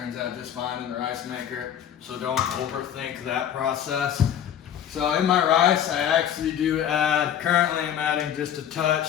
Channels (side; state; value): right; quieter; 9.8 dB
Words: out just fine in the rice maker. So don't overthink that process. So in my rice, I actually do add, currently I'm adding just a touch